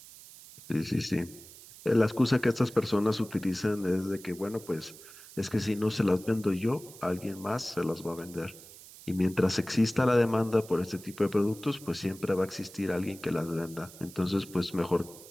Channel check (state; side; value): noise; right; hiss, 18 dB below the sound